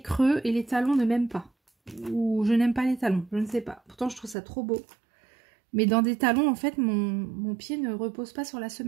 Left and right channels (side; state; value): left; drops out; at 4.4 s